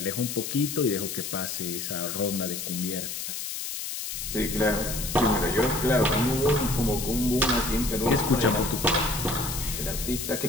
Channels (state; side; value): noise; left; hiss, 5 dB below the sound